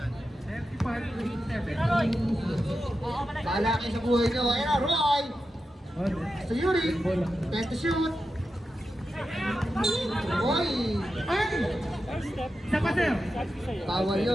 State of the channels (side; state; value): both; normal; correlation 0.90